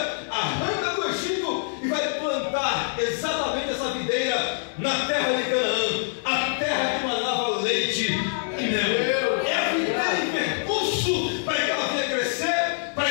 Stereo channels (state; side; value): silent; right; digital silence